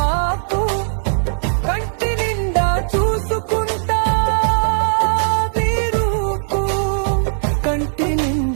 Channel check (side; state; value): left; silent; digital silence